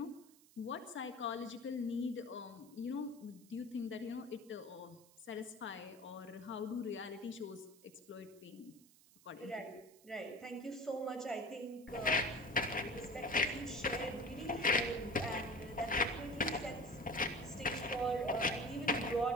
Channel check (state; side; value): noise; right; hiss, 25 dB below the sound